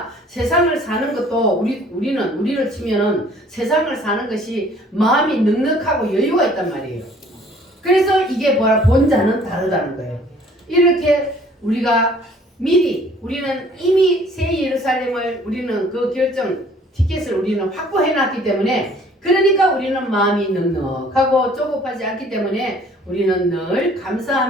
세상을 사는 것도 우리를 치면은 세상을 사는 것이 마음이 넉넉하고 여유가 있단 말이에요. 그래서 이게 뭐야? 본자는 다르다는 거예요. 이렇게 우리가 우리는 이미 새 예루살렘을 우리는 그 티켓을 우리는 확보해 놨기 때문에, 그러니까 우리는 마음이 넉넉하고 조급하지 않기 때문에 우리는 늘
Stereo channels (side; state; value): both; normal; correlation 0.56